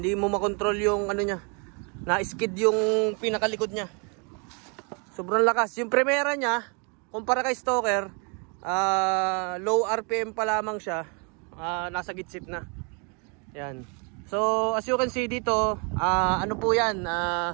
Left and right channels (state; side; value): quieter; left; 35.2 dB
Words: mo makontrol yung ano niya. Na-skid yung pinakalikod niya. Sobrang lakas. Yung primera niya, kumpara kay Stoker, low RPM pa lamang siya. Nasa gitsit na. Yan. So as you can see dito, ano po yan,